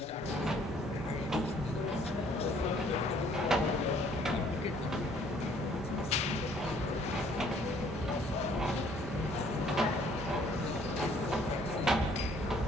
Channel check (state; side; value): normal; both; correlation 0.61